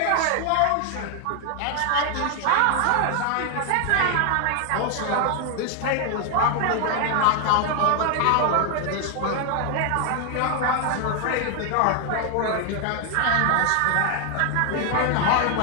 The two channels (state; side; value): different; both; correlation 0.00